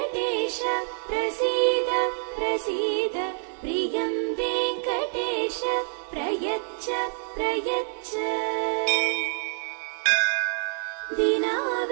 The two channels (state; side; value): silent; left; digital silence